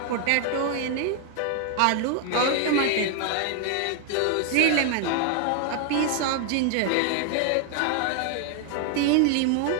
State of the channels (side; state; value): both; different; correlation 0.00